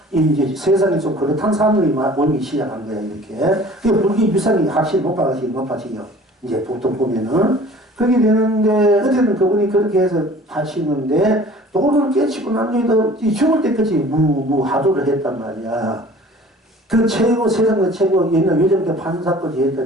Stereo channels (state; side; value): normal; both; correlation 0.47